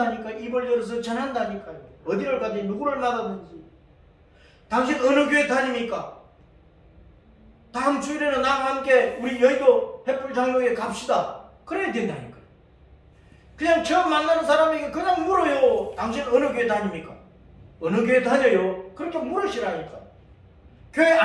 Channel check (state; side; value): identical; both; correlation 1.00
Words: 입을 열어서 전한다니까요. 어디를 가든지 누구를 만나든지. 당신 어느 교회 다닙니까? 다음 주일에는 나와 함께 우리 여의도 횃불장로에 갑시다. 그래야 된다니까요. 그냥 처음 만나는 사람에게 그냥 물어요. 당신 어느 교회 다닙니까? 어느 교회 다녀요? 그렇게 물으시라니까. 교회